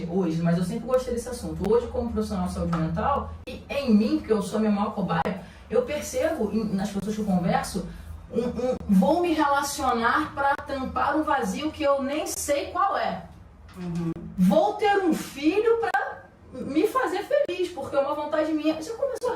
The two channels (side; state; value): both; identical; correlation 1.00